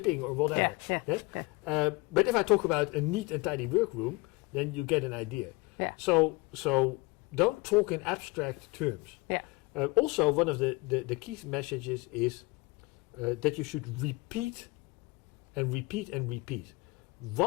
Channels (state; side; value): quieter; right; 24.6 dB